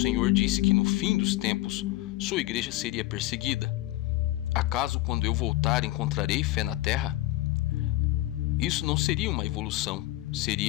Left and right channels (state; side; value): quieter; right; 17.4 dB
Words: Senhor disse que no fim dos tempos, sua igreja seria perseguida. Acaso quando eu voltar encontrarei fé na terra? Isso não seria uma evolução,